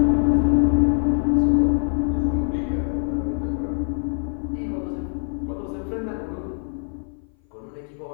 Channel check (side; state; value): right; silent; 57 dB below the other